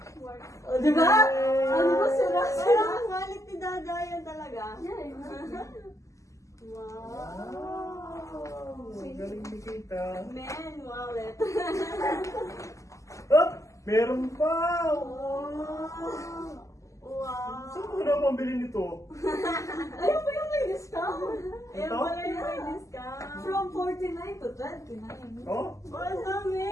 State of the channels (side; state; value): right; late; 0.16 ms